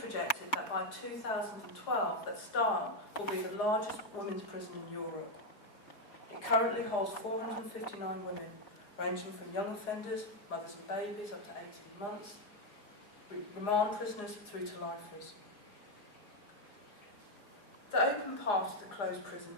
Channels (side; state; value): right; late; 4.8 ms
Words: projected that by 2012 that Style will be the largest women's prison in Europe. It currently holds 459 women, ranging from young offenders, mothers and babies up to 18 months, remand prisoners through to lifers. The open part of the closed prison